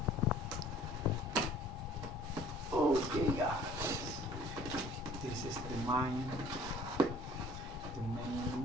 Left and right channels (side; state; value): both; normal; correlation 0.53